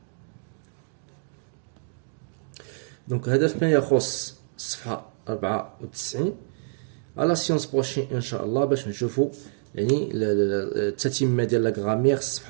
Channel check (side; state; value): left; silent; 60 dB below the other